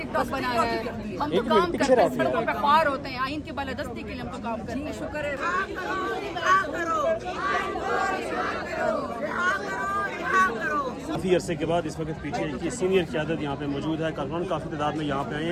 बनाना है। हम तो काम करते हैं, सड़कों पे ख्वार होते हैं, आइन की बालादस्ती के लिए हम तो काम करते हैं। शुक्र है काफ़ी अरसे के बाद इस वक्त पीछे की सीनियर क़यादत यहाँ पे मौजूद है। कारकुनान काफ़ी तादाद में यहाँ पे आए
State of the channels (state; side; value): identical; both; correlation 1.00